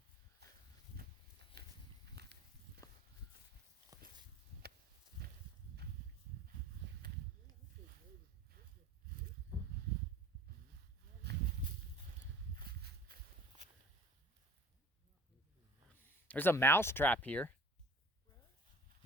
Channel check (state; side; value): normal; both; correlation 0.45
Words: There's a mouse trap here.